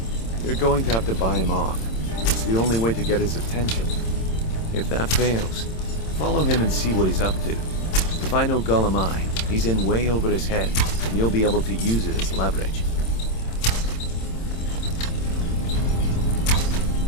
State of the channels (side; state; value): right; late; 26 ms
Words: You're going to have to buy him off. It's the only way to get his attention. If that fails, follow him and see what he's up to. If I know Gullem-Ei, he's in way over his head, and you'll be able to use it as leverage.